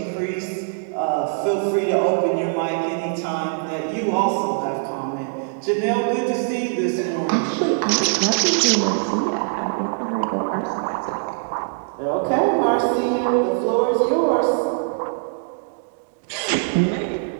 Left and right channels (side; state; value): left; silent; digital silence